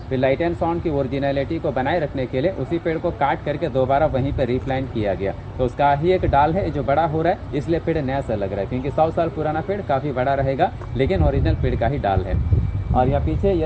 फिर लाइट एंड साउंड की ओरिजिनलिटी को बनाए रखने के लिए उसी पेड़ को काट करके दोबारा वहीं पर रिप्लांट किया गया। तो उसका ही एक डाल है जो बड़ा हो रहा है, इसलिए पेड़ नया सा लग रहा है, क्योंकि 100 साल पुराना पेड़ काफ़ी बड़ा रहेगा, लेकिन ओरिजिनल पेड़ का ही डाल है। और यहाँ पीछे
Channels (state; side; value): identical; both; correlation 1.00